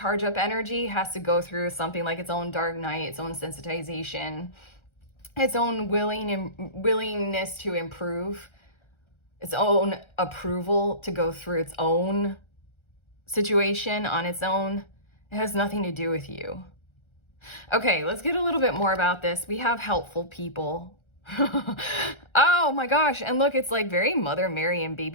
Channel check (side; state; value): right; late; 1.3 ms